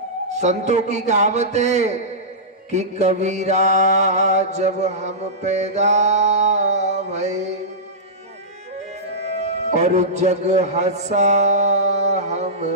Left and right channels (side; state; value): both; normal; correlation -0.16